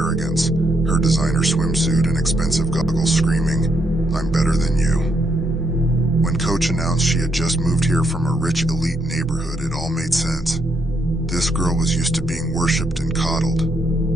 her designer swimsuit and expensive goggles screaming, "I'm better than you." When Coach announced she had just moved here from a rich elite neighborhood, it all made sense. This girl was used to being worshipped and coddled.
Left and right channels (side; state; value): both; normal; correlation 0.76